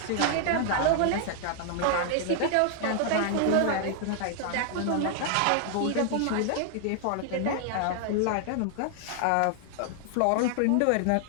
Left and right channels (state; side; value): different; both; correlation 0.00